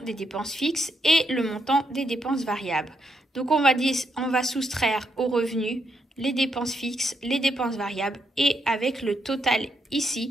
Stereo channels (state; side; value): normal; both; correlation 0.79